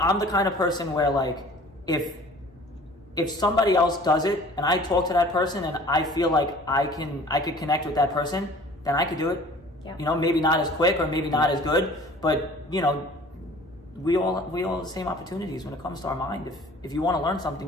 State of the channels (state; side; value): normal; both; correlation 0.48